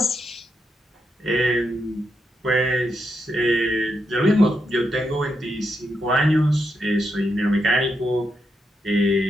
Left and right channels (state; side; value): normal; both; correlation 0.83